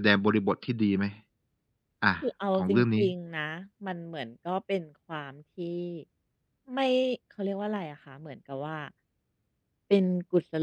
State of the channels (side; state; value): both; identical; correlation 1.00